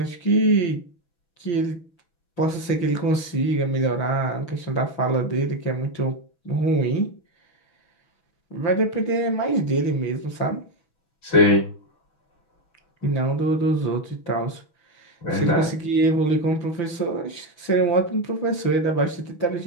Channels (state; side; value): late; right; 5.8 ms